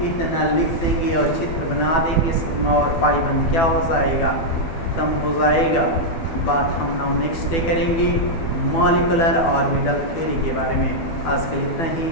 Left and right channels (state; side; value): late; right; 12 ms